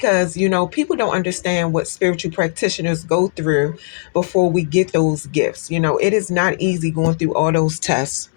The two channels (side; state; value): right; silent; 67 dB below the other